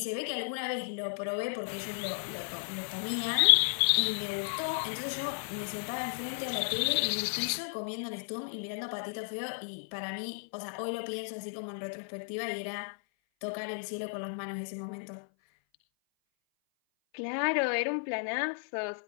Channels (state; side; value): silent; right; 55 dB below the other